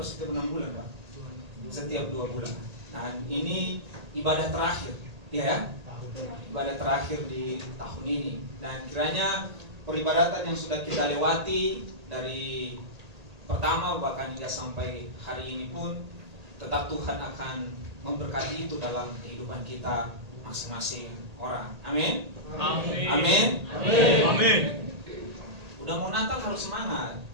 setiap 6 bulan, Pak? Setiap 2 bulan. Nah, ini ibadah terakhir, ya, ibadah terakhir di tahun ini. Dan kiranya peribadatan yang sudah kita lewati dari pertama bahkan hingga sampai hari ini pun tetap Tuhan akan memberkati itu dalam kehidupan kita masing-masing orang. Amin. Amin. Amin. Amin. Amin. Udah mau Natal harus semangat.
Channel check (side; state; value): left; late; 1.8 ms